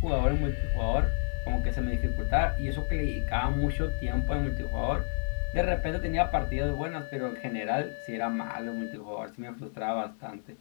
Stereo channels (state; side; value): silent; right; 58 dB below the other